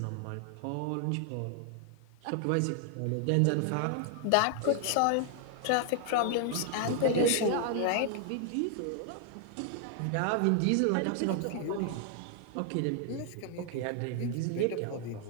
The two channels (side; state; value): both; different; correlation 0.00